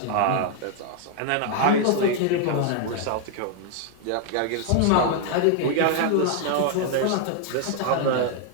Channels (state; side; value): different; both; correlation 0.00